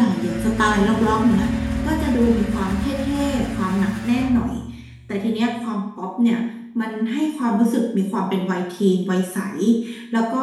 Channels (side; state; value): both; identical; correlation 1.00